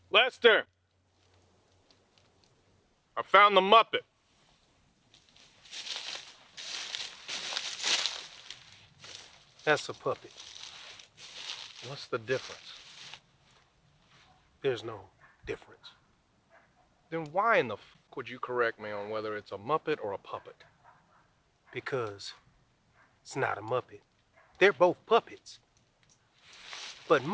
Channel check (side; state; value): both; identical; correlation 1.00